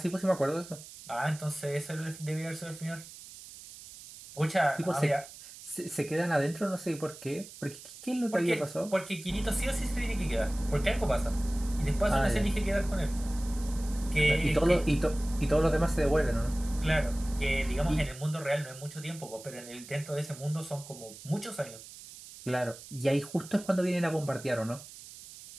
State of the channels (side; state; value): right; noise; hiss, 16 dB below the sound